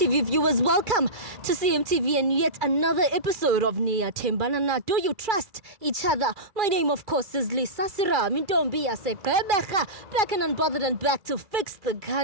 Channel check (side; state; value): left; late; 2.3 ms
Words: viewers, welcome to CMTV and yet another episode of Niyathembana Na. Do you trust each other? My name of course is Serame. Back and unbothered and back to fix the